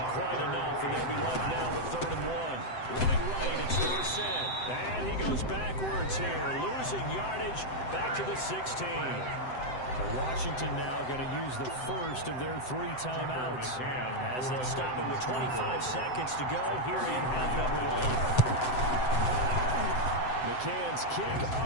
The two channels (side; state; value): right; late; 7.8 ms